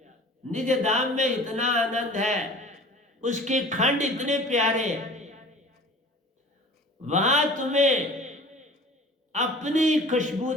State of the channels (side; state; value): both; normal; correlation 0.44